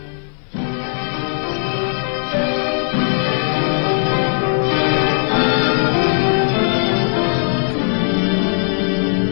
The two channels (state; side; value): silent; right; digital silence